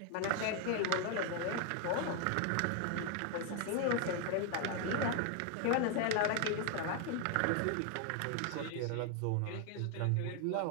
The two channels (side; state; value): both; different; correlation 0.01